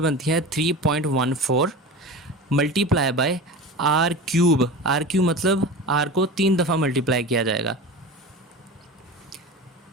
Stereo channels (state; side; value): normal; both; correlation 0.31